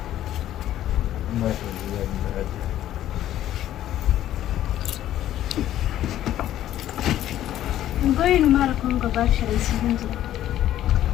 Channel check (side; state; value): right; quieter; 12.5 dB